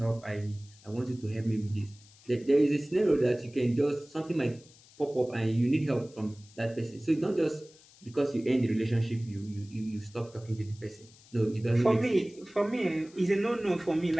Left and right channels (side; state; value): left; noise; hiss, 25 dB below the sound